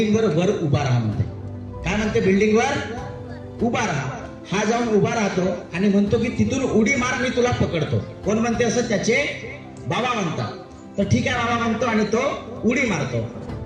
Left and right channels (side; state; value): both; identical; correlation 1.00